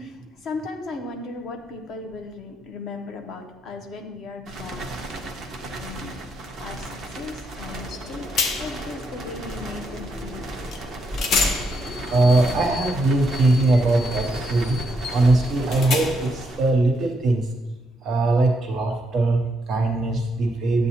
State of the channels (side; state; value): both; normal; correlation 0.78